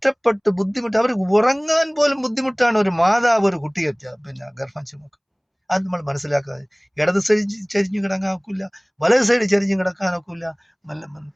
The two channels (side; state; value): both; identical; correlation 1.00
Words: ബുദ്ധിമുട്ട്, അവർ ഉറങ്ങാൻ പോലും ബുദ്ധിമുട്ടാണ് ഒരു മാതാവ് ഒരു കുട്ടിയെ പിന്നെ ഗർഭം ചുമക്കും. അത് നമ്മൾ മനസ്സിലാക്കാതെ, ഇടത് സൈഡ് ചരിഞ്ഞു കിടക്കാനൊക്കില്ല, വലത് സൈഡ് ചരിഞ്ഞു കിടക്കാനൊക്കില്ല,